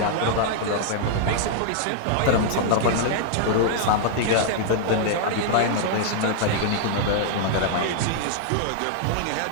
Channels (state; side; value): different; both; correlation -0.01